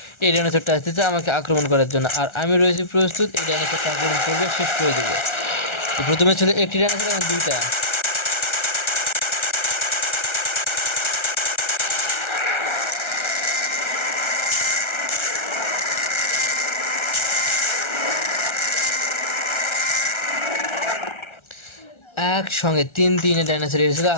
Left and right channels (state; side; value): late; right; 1.4 ms